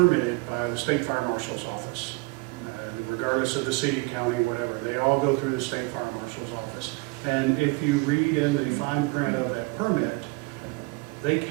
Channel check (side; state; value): left; quieter; 26.9 dB